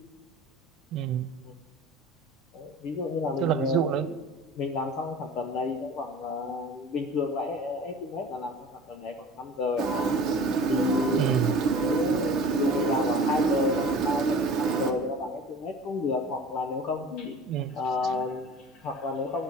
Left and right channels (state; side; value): normal; both; correlation 0.40